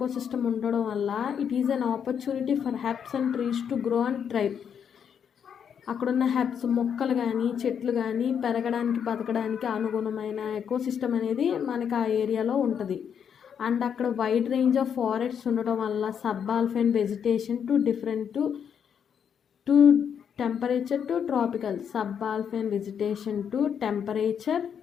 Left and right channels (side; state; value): right; quieter; 7.8 dB